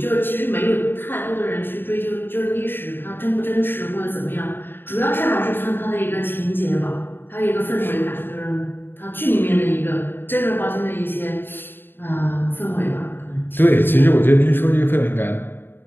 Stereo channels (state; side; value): late; right; 0.098 ms